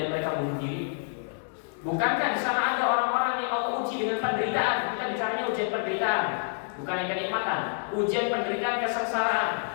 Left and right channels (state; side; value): silent; right; digital silence